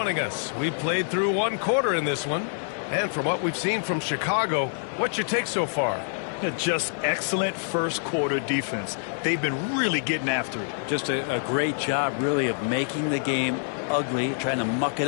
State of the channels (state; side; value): silent; right; 61 dB below the other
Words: us, we played through 1 quarter in this one. And from what we've seen from Chicago, what's your take so far? Just excellent first quarter defense. They've been really getting after it. Just a great job, really, of making the game ugly, trying to muck